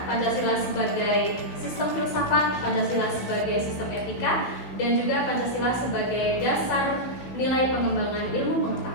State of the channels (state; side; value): late; right; 16 ms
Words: Pancasila sebagai sistem filsafat, Pancasila sebagai sistem etika, dan juga Pancasila sebagai dasar nilai pengembangan ilmu